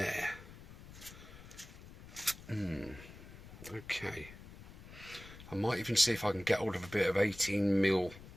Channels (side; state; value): left; noise; rumble, 17 dB below the sound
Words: Okay. I might even see if I can get hold of a bit of 18mm